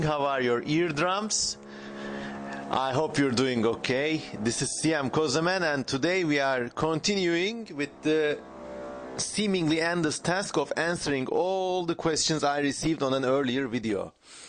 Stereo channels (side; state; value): both; identical; correlation 1.00